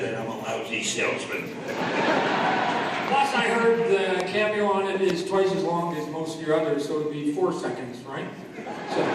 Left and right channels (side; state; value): both; identical; correlation 1.00